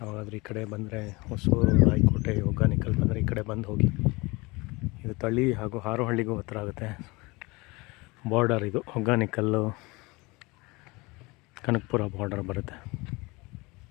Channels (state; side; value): quieter; right; 24.5 dB